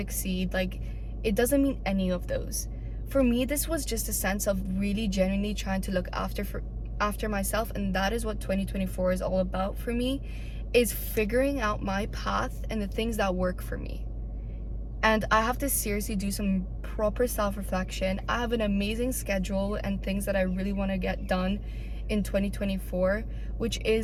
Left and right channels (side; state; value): both; identical; correlation 1.00